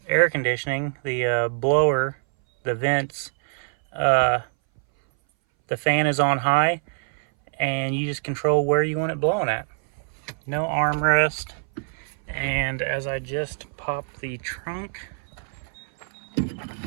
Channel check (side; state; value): left; silent; 61 dB below the other